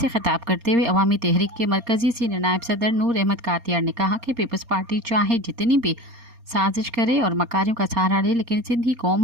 خطاب کرتے ہوئے عوامی تحریک کے مرکزی سینئر نائب صدر نور احمد کاتیار نے کہا کہ پیپلز پارٹی چاہے جتنی بھی سازش کرے اور مکاریوں کا سہارا لے، لیکن سندھی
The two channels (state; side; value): late; left; 4.3 ms